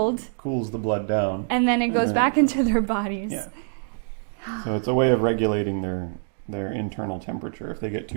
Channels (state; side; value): silent; left; digital silence